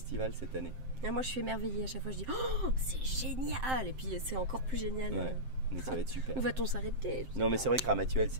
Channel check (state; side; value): late; left; 7.7 ms